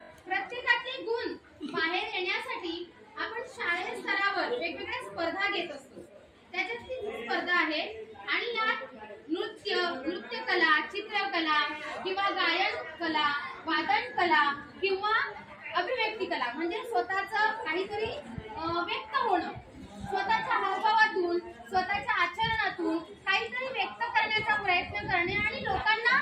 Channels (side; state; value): both; identical; correlation 1.00